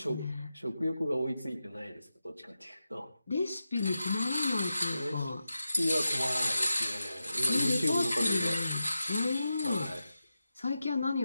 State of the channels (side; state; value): both; inverted; correlation -0.90